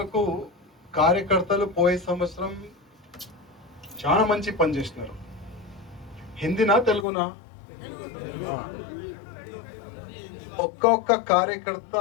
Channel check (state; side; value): drops out; right; at 7.1 s